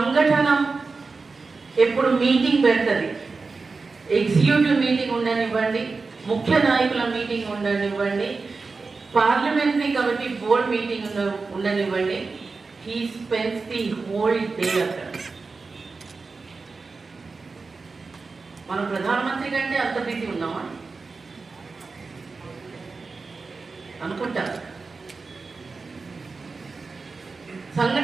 ఎప్పుడు మీటింగ్ పెడుతుంది, ఎగ్జిక్యూటివ్ మీటింగ్ ఉండనివ్వండి, ముఖ్య నాయకుల మీటింగ్ ఉండనివ్వండి, పార్లమెంటరీ కమిటీ బోర్డ్ మీటింగ్ ఉండనివ్వండి, he spends the whole day అక్కడ. మనం ప్రధానమంత్రి కంటే అంత బిజీ ఉన్నామా అనుకుంటా.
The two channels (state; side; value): quieter; left; 4.2 dB